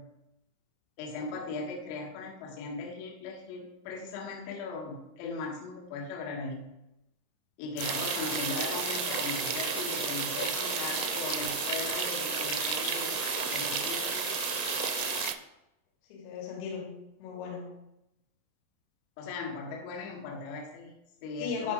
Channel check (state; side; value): late; right; 33 ms